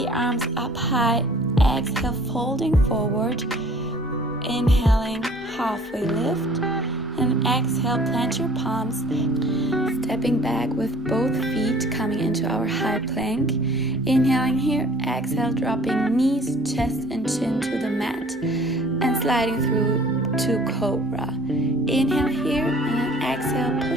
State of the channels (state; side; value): normal; both; correlation 0.51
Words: arms up high, exhale, folding forward, inhaling, halfway lift, and exhale, plant your palms, stepping back with both feet coming into our high plank. Inhaling here, exhale, dropping knees, chest and chin to the mat, and sliding through to cobra. Inhale here, and then exhale,